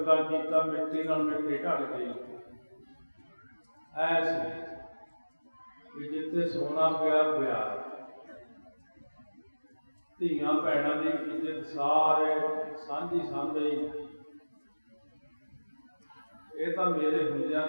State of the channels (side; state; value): both; inverted; correlation -1.00